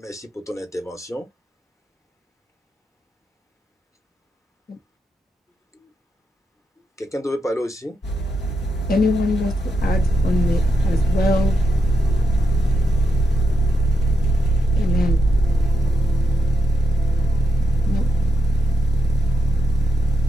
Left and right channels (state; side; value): normal; both; correlation 0.85